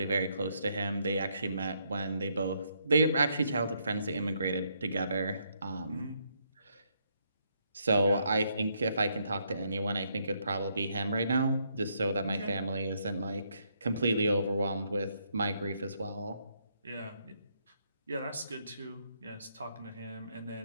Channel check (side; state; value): both; inverted; correlation -0.75